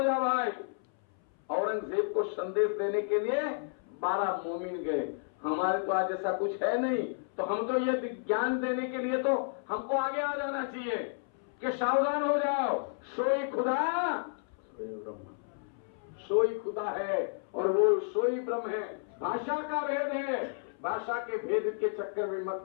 जा भाई। औरंगजेब को संदेश देने के लिए 12 मोमिन गए। हमारे तो आज ऐसा कुछ है नहीं, तो हम तो ये ज्ञान देने के लिए तो हमको आगे आ जाना चाहिए कि सावधान हो जाओ, सोई खुदा सोई खुदा है और वो सोई ब्रह्म है। भाषा का भेद है, भाषा के भेद के चक्कर में मत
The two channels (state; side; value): silent; right; 57 dB below the other